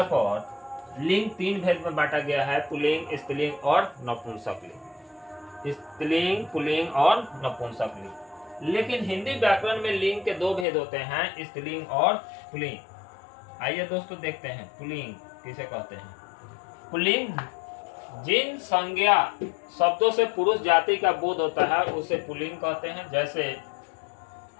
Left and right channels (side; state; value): right; drops out; at 10.7 s